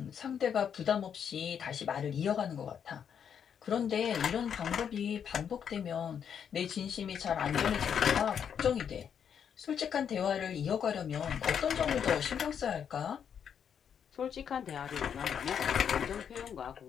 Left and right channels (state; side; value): quieter; right; 7.9 dB